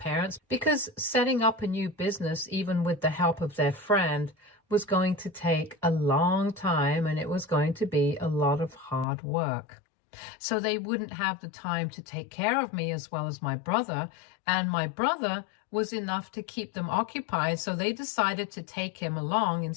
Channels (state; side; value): drops out; right; at 9.1 s